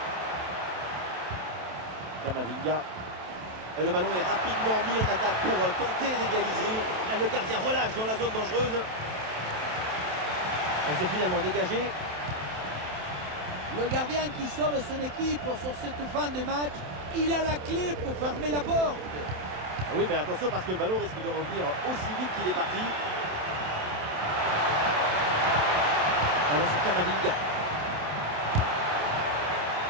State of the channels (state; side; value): late; left; 27 ms